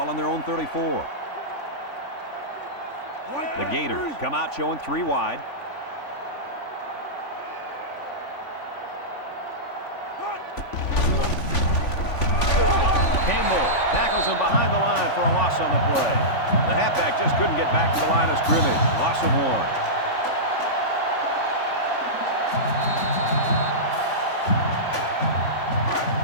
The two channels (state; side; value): late; right; 3.5 ms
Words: on their own 34. The Gators come out showing 3 wide. Campbell tackles him behind the line for a loss on the play. The halfback just couldn't get back to the line of scrimmage. Loss of 1.